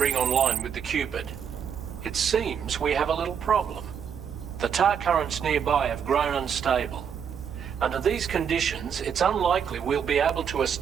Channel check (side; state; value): left; quieter; 7.6 dB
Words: online with the Cupid. It seems we have a little problem. The tar currents nearby have grown unstable. Under these conditions, it's unlikely we'll be able to